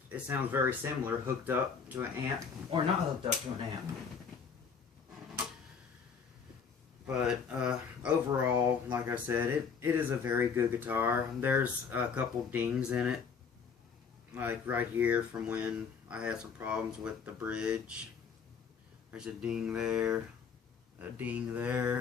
it sounds very similar, hooked up to an amp, or not hooked up to an amp. But overall, like I said, it is a very good guitar. There's a couple dings in it, like right here from when I had some problems with the bridge. There's a ding there, a ding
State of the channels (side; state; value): right; quieter; 6.1 dB